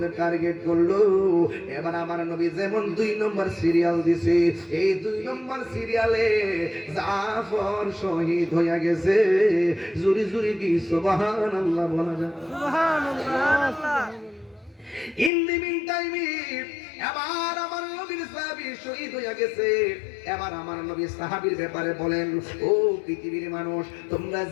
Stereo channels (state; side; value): drops out; right; at 15.3 s